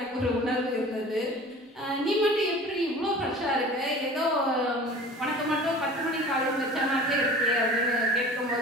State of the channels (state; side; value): normal; both; correlation 0.41